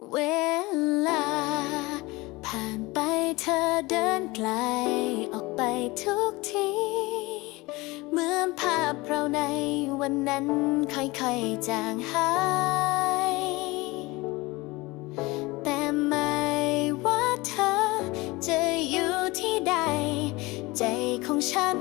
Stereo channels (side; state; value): right; quieter; 22.5 dB